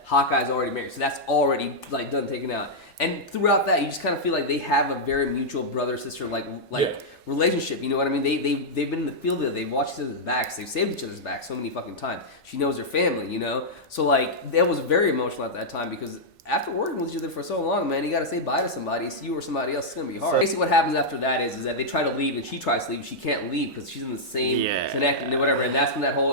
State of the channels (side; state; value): both; normal; correlation -0.06